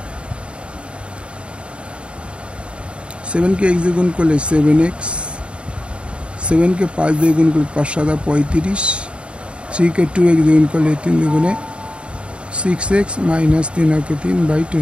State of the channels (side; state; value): left; late; 0.057 ms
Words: 7 के x দিয়ে গুণ করলে 7x 7 के 5 দিয়ে গুণ করলে 5 7 35 3 के 2x দিয়ে গুণ করলে 3 দুগুণে 6x minus 3 के 3 by